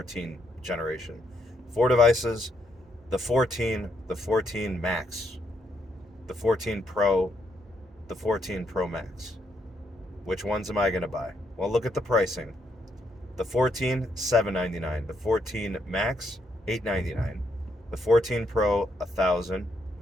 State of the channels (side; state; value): both; normal; correlation 0.76